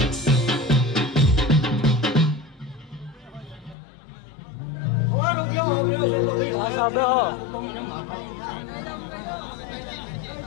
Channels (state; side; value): drops out; right; at 3.8 s